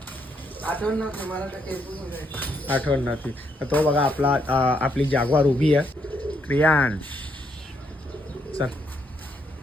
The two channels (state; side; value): normal; both; correlation 0.75